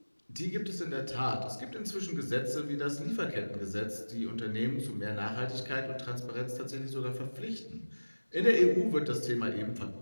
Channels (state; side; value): inverted; both; correlation -1.00